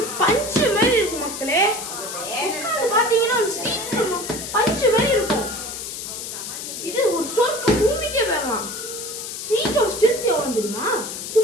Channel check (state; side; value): noise; left; hiss, 7 dB below the sound